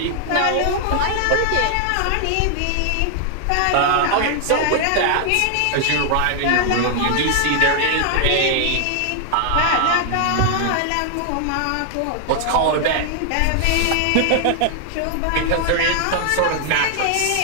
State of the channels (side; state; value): both; different; correlation 0.00